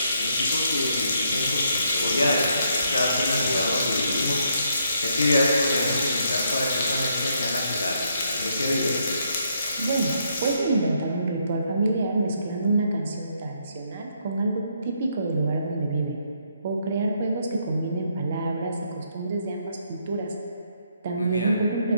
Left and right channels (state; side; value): inverted; both; correlation -0.73